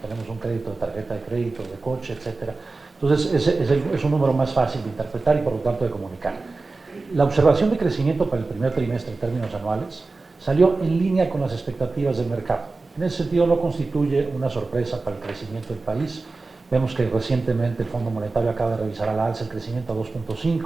un crédito de tarjeta de crédito, de coche, etc. Entonces, es un número más fácil de interpretar y por lo tanto de comunicar. La observación de crecimiento para el primer trimestre en términos anuales salió en línea con las expectativas del mercado. En ese sentido, no constituye una sorpresa para el crecimiento del país. Vemos que recientemente el Fondo Monetario acaba de revisar a la alza el crecimiento a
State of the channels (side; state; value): left; quieter; 3.6 dB